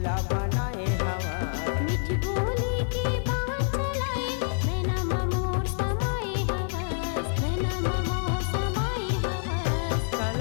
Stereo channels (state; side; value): silent; right; 60 dB below the other